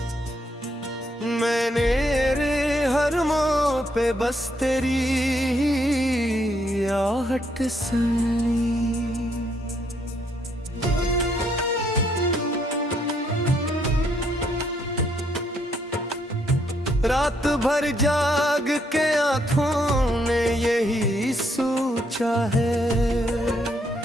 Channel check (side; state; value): both; normal; correlation 0.73